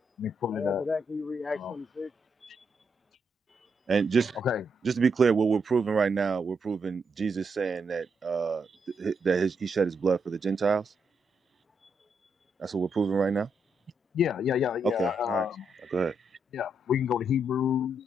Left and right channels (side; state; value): both; normal; correlation 0.79